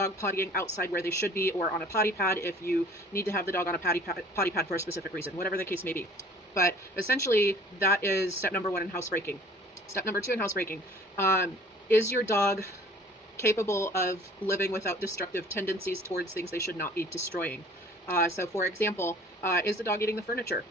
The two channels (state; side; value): normal; both; correlation 0.50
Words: pottying outside where they should be or on a potty pad if you need to have the dog on a potty pad for a specific reason, whatever the case may be. But essentially, that is step number one in housebreaking. Step number two in housebreaking, is your dog capable of living without destructive tendencies towards things they should not be destroying? So for example, is the dog eating the furniture?